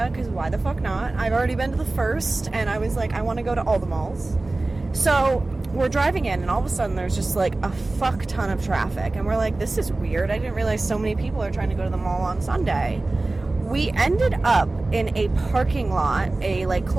because why the fuck not? I've already been to the first, and I was like, I want to go to all the malls. So we're driving in, and all of a sudden there's just like a fuck ton of traffic, and we're like, this is weird. I didn't realize so many people are trying to go to the mall on Sunday. We ended up in a parking lot, a like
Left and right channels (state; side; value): quieter; left; 3.1 dB